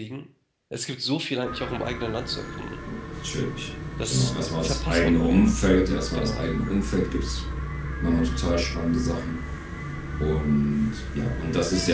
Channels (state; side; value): identical; both; correlation 1.00